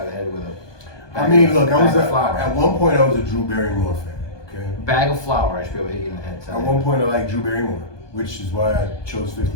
of the head with a. I mean, look, bag of flour. at one point I was a Drew Barrymore fan. Okay. Bag of flour, I should be able to hit you in the head. At one point I liked Drew Barrymore, which is why I chose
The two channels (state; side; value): late; right; 1.2 ms